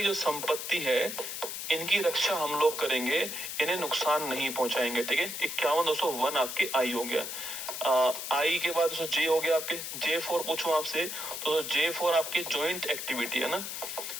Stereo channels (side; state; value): left; noise; hiss, 6 dB below the sound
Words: जो संपत्ति है, इनकी रक्षा हम लोग करेंगे, इन्हें नुकसान नहीं पहुंचाएंगे, ठीक है। 51 दोस्तों 1 आपके आई हो गया। आई के बाद जे हो गया आपके, J4 पूछूं आपसे तो J4 आपके जॉइंट एक्टिविटी है ना,